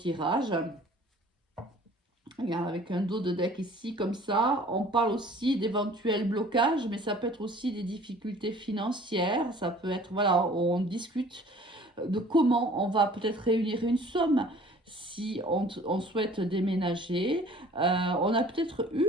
avec un dos de deck ici, comme ça. On parle aussi d'éventuels blocages, mais ça peut être aussi des difficultés financières. Ça peut être, voilà, on discute de comment on va peut-être réunir une somme si on souhaite déménager. On a peut-être eu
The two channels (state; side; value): normal; both; correlation 0.50